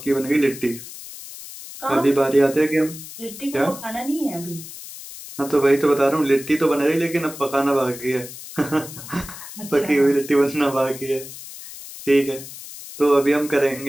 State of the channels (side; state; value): left; noise; hiss, 13 dB below the sound